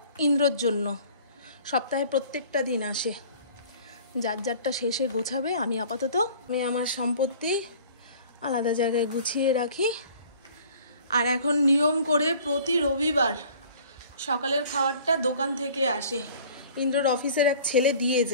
ইন্দ্রর জন্য সপ্তাহে প্রত্যেকটা দিন আসে। যার যারটা শেষে গোছাবে, আমি আপাতত আমার সম্পত্তি আলাদা জায়গায় গুছিয়ে রাখি। আর এখন নিয়ম করে প্রতি রবিবার সকালের খাবারটা দোকান থেকে আসে, ইন্দ্রর অফিসের এক ছেলে দিয়ে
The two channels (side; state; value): both; inverted; correlation -0.49